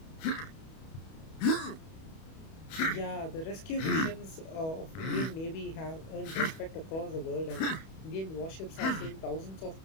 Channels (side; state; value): right; late; 31 ms